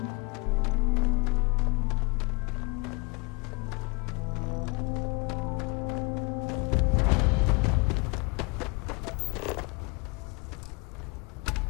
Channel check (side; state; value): right; quieter; 28.4 dB